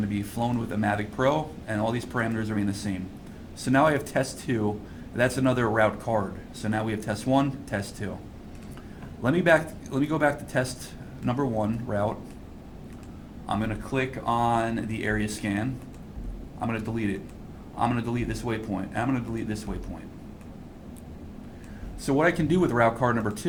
to be flown with a Mavic Pro, and all these parameters are the same. So now I have test 2. That's another route card. So now we have test 1, test 2. Let me go back to test number 1 route. I'm going to click on the area scan. I'm going to delete it. I'm going to delete this waypoint. I'm going to delete this waypoint. So what I can do with route card number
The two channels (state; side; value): identical; both; correlation 1.00